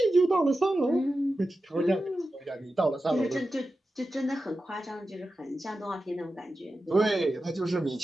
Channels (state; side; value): normal; both; correlation 0.92